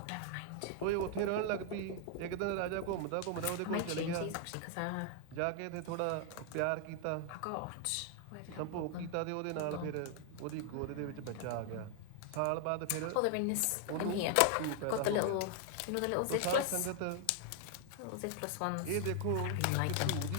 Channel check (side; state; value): both; different; correlation 0.00